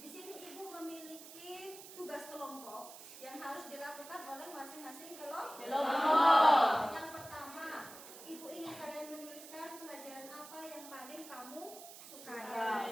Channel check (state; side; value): noise; right; hiss, 15 dB below the sound